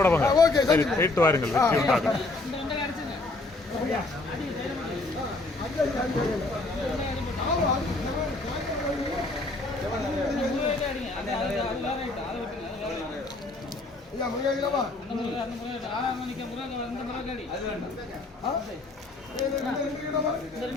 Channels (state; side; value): quieter; right; 3.1 dB